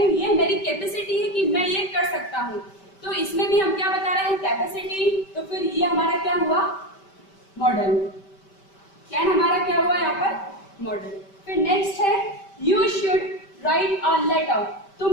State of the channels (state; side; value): late; right; 5.1 ms